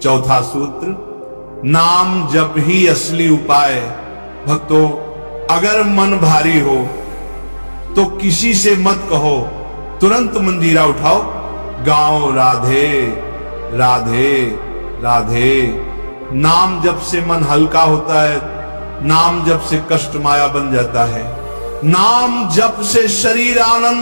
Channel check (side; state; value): both; inverted; correlation -1.00